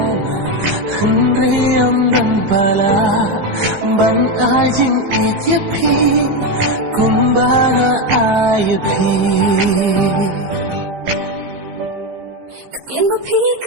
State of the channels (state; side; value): late; left; 15 ms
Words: Hân rê âm đàn bà la Bạn ai chính ít nhiệt khi Cùng bà ngã ai nhiệt khi Kien bà phí